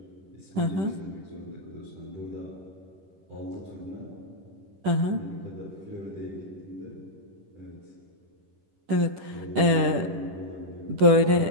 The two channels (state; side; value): late; left; 10 ms